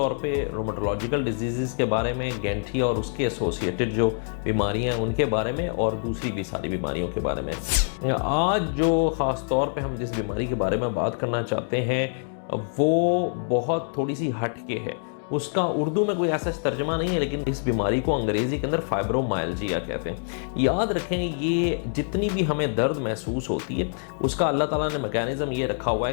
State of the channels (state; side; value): silent; right; digital silence